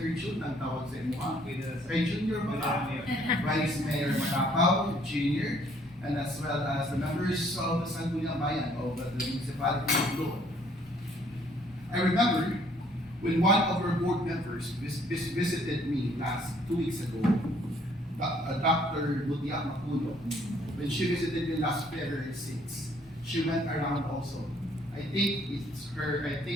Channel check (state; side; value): normal; both; correlation 0.62